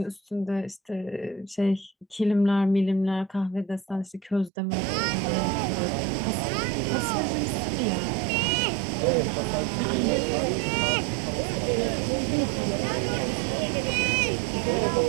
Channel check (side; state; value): left; drops out; at 4.5 s